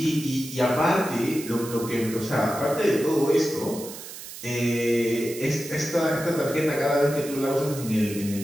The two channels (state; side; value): noise; right; hiss, 12 dB below the sound